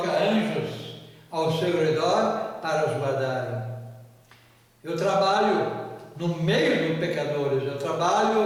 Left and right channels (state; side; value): identical; both; correlation 1.00